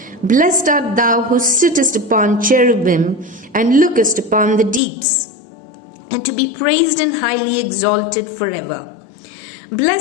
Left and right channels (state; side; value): drops out; right; at 4.8 s